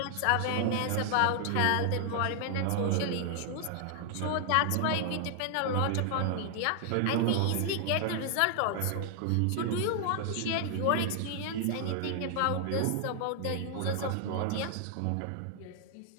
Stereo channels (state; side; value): different; both; correlation 0.00